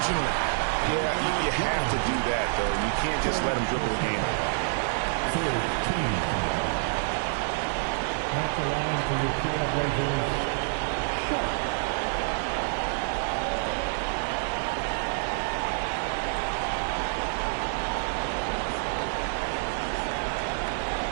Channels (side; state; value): left; silent; 60 dB below the other